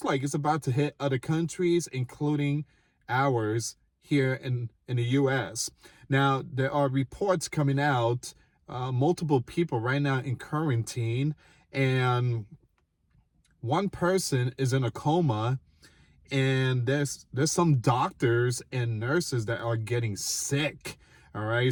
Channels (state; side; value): identical; both; correlation 1.00